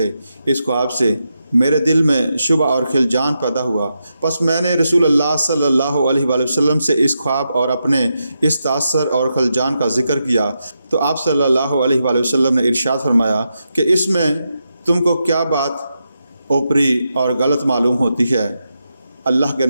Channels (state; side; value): inverted; both; correlation -0.86